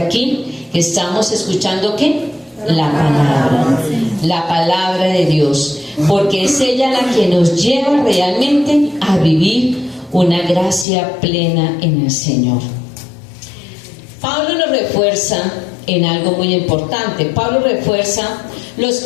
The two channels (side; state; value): right; drops out; at 10.9 s